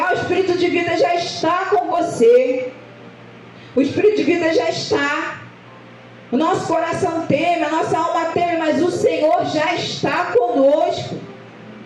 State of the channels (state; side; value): identical; both; correlation 1.00